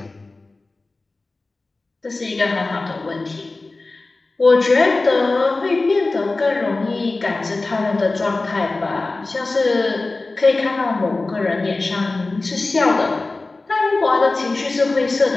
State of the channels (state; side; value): quieter; right; 3.3 dB